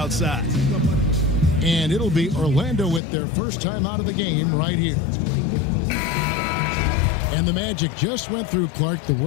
And it'll be Orlando with their first time out of the game right here. And the Magic just went through, Clark, the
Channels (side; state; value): right; drops out; at 3.0 s